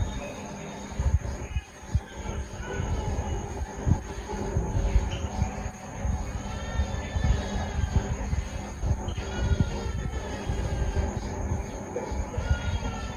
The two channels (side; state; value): both; identical; correlation 1.00